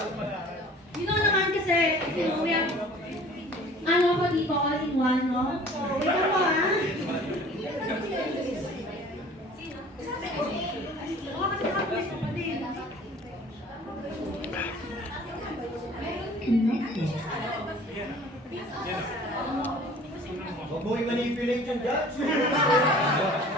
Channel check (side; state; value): both; normal; correlation 0.48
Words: You know naman kasi, you know, we have, ano ako dito, all in one, no? Wait ako, ha? Oo, kasi nakapulis ko pa din. Huwag mo i-manipulate yung judge.